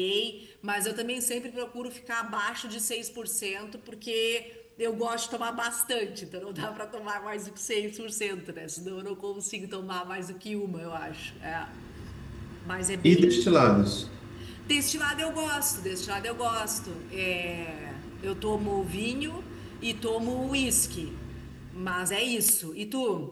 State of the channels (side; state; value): both; identical; correlation 1.00